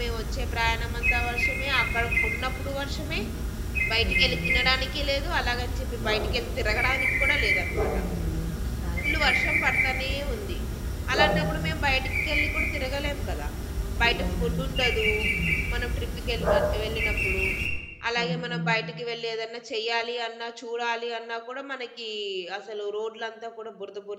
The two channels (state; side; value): identical; both; correlation 1.00